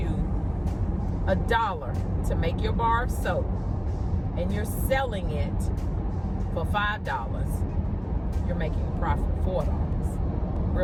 $1 to make your bar of soap and you're selling it for $5, you're making a profit of $4.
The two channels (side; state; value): both; identical; correlation 1.00